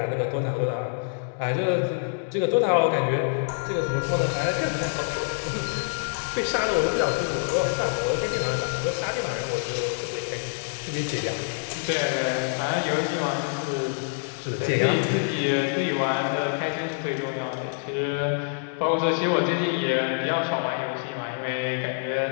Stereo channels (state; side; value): silent; right; 61 dB below the other